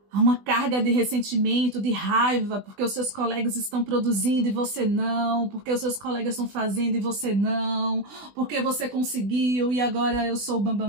uma carga de ressentimento, de raiva, porque os seus colegas estão produzindo e você não, porque os seus colegas estão fazendo e você não, porque você conseguiu e agora eu sou o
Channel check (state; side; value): late; left; 20 ms